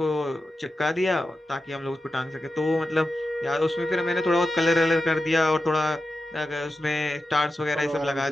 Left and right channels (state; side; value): normal; both; correlation 0.91